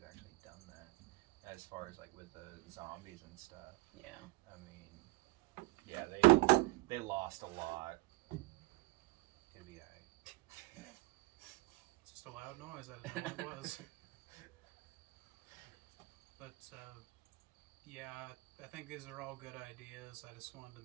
actually done that. As far as like with the zombies and stuff. Yeah. I mean, yeah, they lost a lot. It'd be alright. It's just a loud noise. I didn't know what it was. But yeah, I think these are all good ideas. I just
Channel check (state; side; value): quieter; left; 21.9 dB